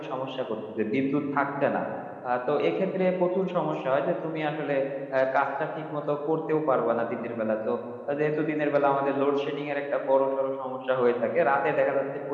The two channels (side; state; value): both; identical; correlation 1.00